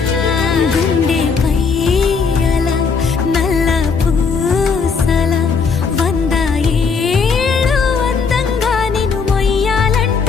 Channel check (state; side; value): quieter; right; 5.3 dB